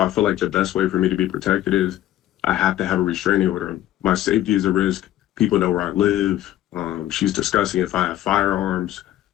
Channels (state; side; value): quieter; right; 13.3 dB